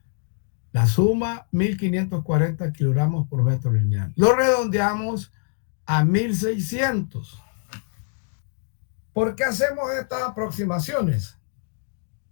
La suma, 1.540 kilogramos por metro lineal. Lo redondeamos a 1.600. ¿Por qué hacemos estas aproximaciones?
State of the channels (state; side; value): silent; right; digital silence